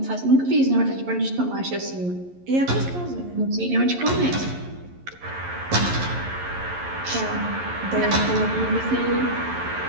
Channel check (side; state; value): left; late; 11 ms